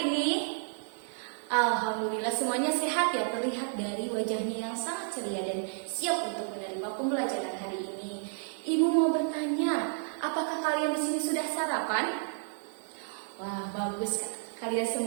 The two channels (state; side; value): silent; left; digital silence